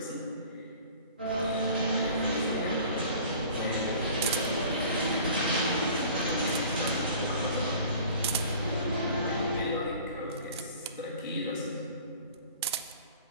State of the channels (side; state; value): both; inverted; correlation -0.45